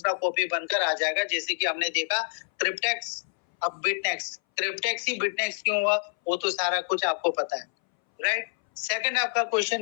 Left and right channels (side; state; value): right; silent; 60 dB below the other